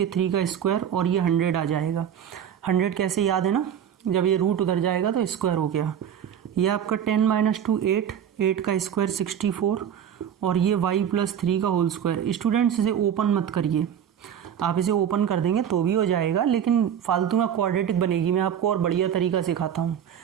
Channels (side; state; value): left; quieter; 9.0 dB